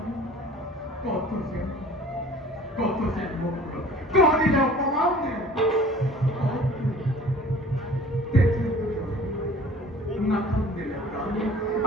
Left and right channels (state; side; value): normal; both; correlation 0.47